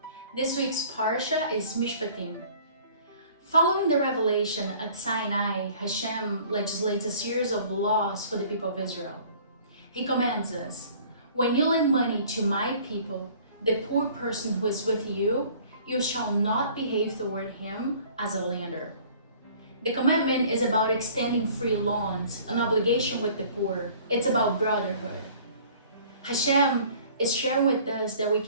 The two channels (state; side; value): inverted; both; correlation -0.51